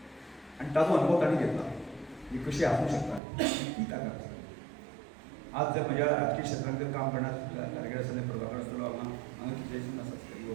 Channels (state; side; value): drops out; left; at 3.2 s